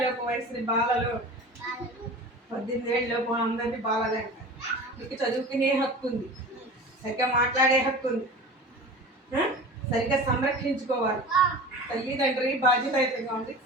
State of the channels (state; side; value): normal; both; correlation 0.36